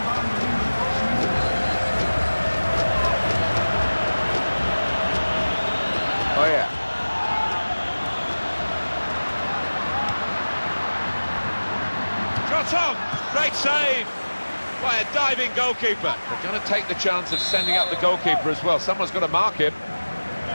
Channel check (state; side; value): inverted; both; correlation -1.00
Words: Oh, yeah. Shot on! Great save by a diving goalkeeper. They're going to take the chance of sending up the goalkeeper as well. Someone's got to mark him.